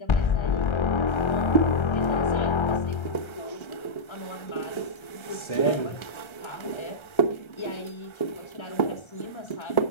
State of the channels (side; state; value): right; late; 1.3 ms